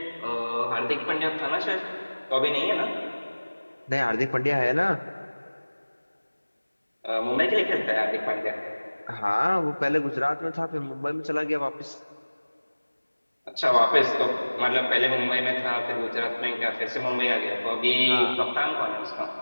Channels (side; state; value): both; inverted; correlation -1.00